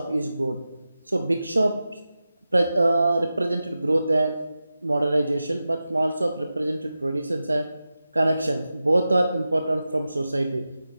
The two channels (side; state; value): both; inverted; correlation -0.93